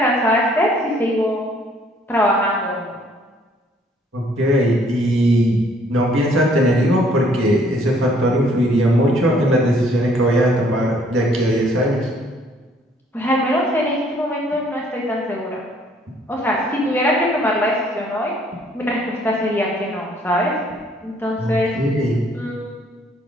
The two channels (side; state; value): both; normal; correlation 0.62